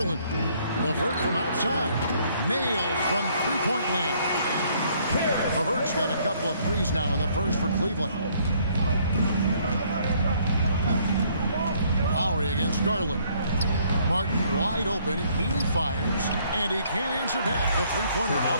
LeVert from outside. Nailed from three-point land. LeVert's got a couple of threes now in the first for Cleveland. Lowry against Garland. Martin wide open. He fires, and he can't answer back. The three-pointer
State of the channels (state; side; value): inverted; both; correlation -0.65